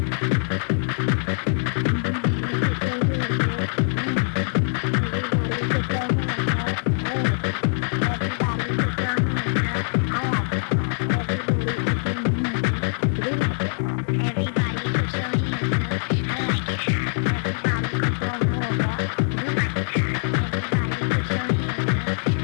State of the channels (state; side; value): silent; right; 63 dB below the other